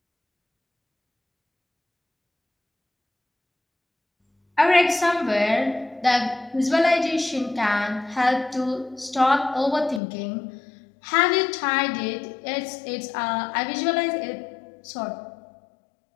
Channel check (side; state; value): right; drops out; at 10.0 s